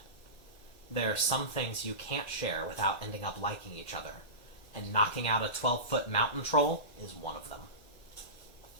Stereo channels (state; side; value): late; right; 1.4 ms